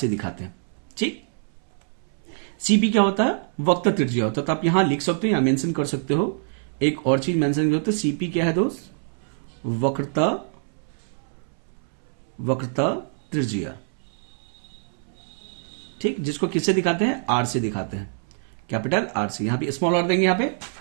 दिखाते हैं, ठीक। सीपी क्या होता है? वक्र त्रिज्या होता है। तो आप यहां लिख सकते हो, यहां मेंशन कर सकते हो, एक और चीज मेंशन करते हो, सीपी क्या है दोस्त? वक्रता त्रिज्या, ठीक, जिसको किससे दिखाते हैं? आर से दिखाते हैं, कैपिटल आर से, यहां पे स्मॉल आर देंगे यहां पे,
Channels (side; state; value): left; silent; 62 dB below the other